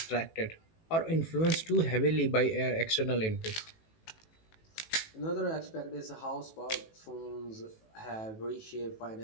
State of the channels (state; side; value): late; right; 18 ms